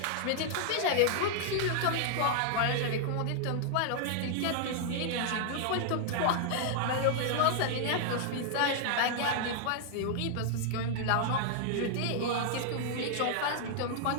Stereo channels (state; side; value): different; both; correlation -0.01